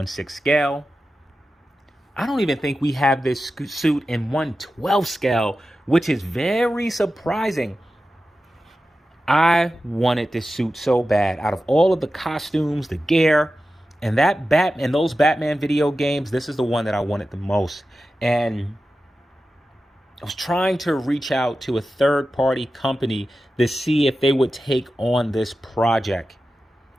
scale. I don't even think we have this suit in 1/12 scale, which is very surprising. I wanted this suit so bad. Out of all of the costumes, the gear, and those Batman video games, this is the one that I wanted the most. And I was trying to reach out to a third-party company to see if they would take on this project.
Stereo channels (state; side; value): normal; both; correlation 0.93